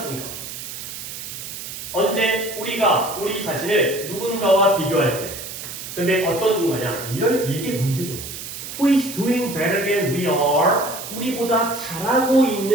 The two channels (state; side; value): noise; right; hiss, 9 dB below the sound